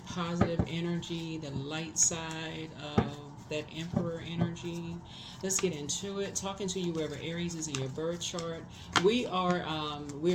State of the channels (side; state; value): both; identical; correlation 1.00